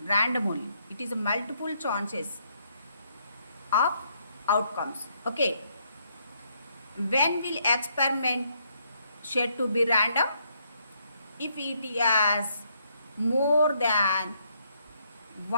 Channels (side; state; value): both; inverted; correlation -0.72